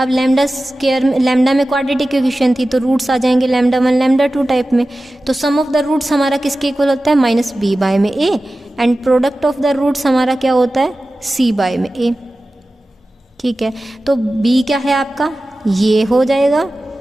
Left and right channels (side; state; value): both; normal; correlation 0.95